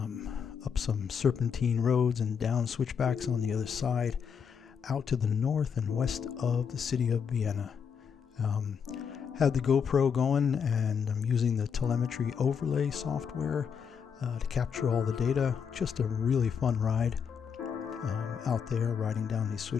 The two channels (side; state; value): right; quieter; 6.8 dB